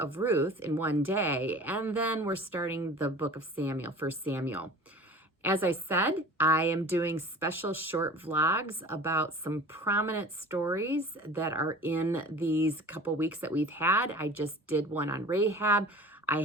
Ruth in one day, and then we're starting the book of Samuel, 1 Samuel. As I said, I am doing special short vlogs about some prominent stories that are in these couple weeks that we've had. I just did one on Rahab. I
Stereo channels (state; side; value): normal; both; correlation 0.41